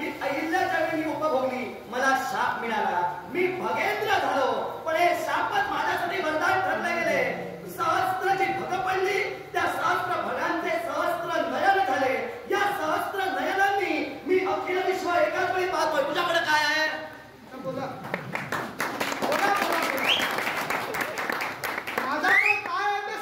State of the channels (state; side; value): identical; both; correlation 1.00